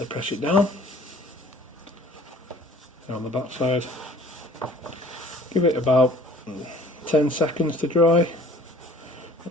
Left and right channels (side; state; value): both; normal; correlation 0.51